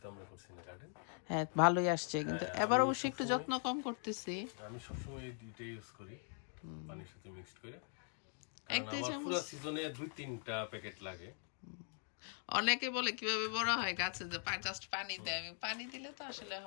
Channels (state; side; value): silent; right; 50 dB below the other